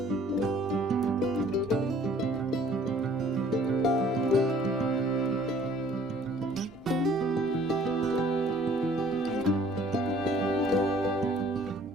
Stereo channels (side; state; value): both; normal; correlation 0.56